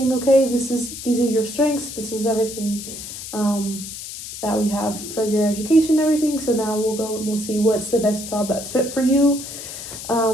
okay, these are your strengths, this is everything that we have for your education and everything. So now we'll go and we'll see what's the best job that's fit for you.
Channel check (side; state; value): left; noise; hiss, 10 dB below the sound